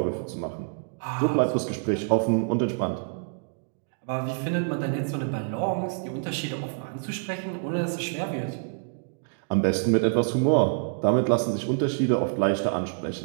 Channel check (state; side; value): silent; left; digital silence